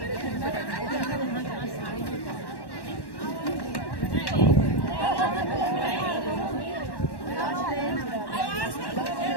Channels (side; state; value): right; late; 1.1 ms